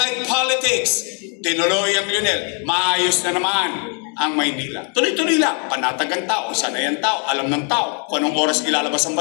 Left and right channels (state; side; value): quieter; right; 39.6 dB